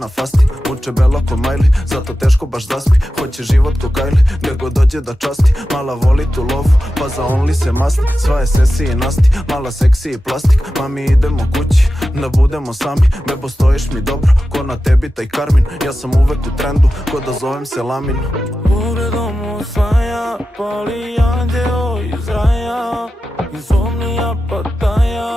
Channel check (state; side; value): normal; both; correlation 0.93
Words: fasti. Uče bela ko Miley, zato teško baš zaspi. Hoće život ko Kylie, gdje god dođe da časti. Mala voli tu lovu, pa za only se masti. Sva je sesi i nasti, mala seksi i plastik. Mami idemo kući, da budemo sami. Bebo stojiš mi dobro, ko na tebi taj Karmin. Ja sam uvek u trendu, ko da zovem se Lamin. Pogledom osvaja, pali anđeo iz raja. Insomnija